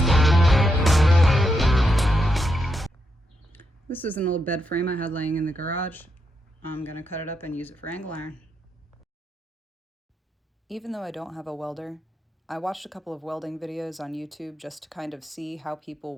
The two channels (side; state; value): both; normal; correlation 0.83